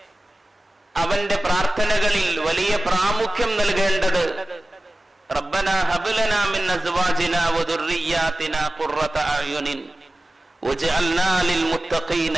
അവന്റെ പ്രാർത്ഥനകളിൽ വലിയ പ്രാമുഖ്യം നൽകേണ്ടത് റബ്ബനാ ഹബ് ലനാ മിൻ അസ്വാജിനാ വദുർരിയ്യാതിനാ ഖുർറത അയുനിൻ വജഅൽനാ ലിൽ മുത്തഖീന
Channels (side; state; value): both; normal; correlation 0.96